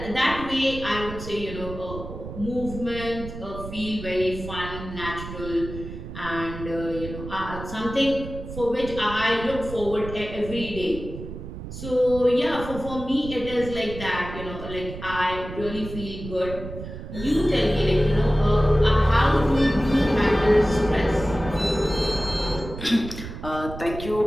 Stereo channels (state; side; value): noise; right; rumble, 10 dB below the sound